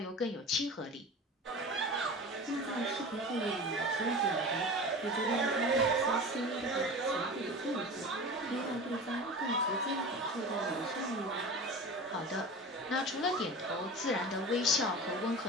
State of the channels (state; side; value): normal; both; correlation 0.33